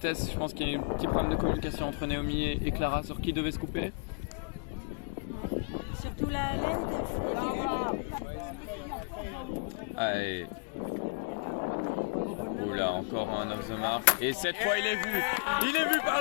Je pense qu'il y a eu un petit problème de communication entre Naomi et Clara sur qui devait scooper. Surtout la laine était libre. Allez. Oula, encore un off the mark. Et cette fois, il est vu. Il est vu par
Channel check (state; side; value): quieter; right; 35.7 dB